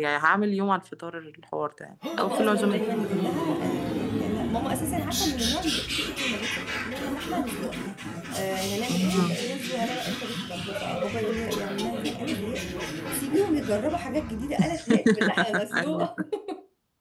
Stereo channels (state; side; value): identical; both; correlation 1.00